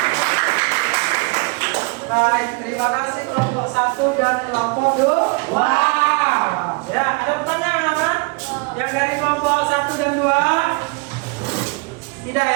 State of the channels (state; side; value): quieter; left; 28.5 dB